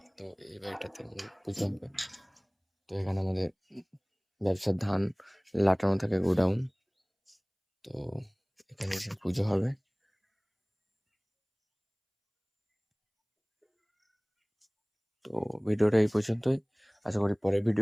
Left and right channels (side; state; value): both; identical; correlation 1.00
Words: তো এই বাড়িটাতে আমাদের পুজো হবে। তো এখানে আমাদের ব্যবসার ধান লাটানো থাকে, গোডাউন। তো এখানে এসে পুজো হবে। তো ভিডিওটা এই পর্যন্তই। আশা করি পরের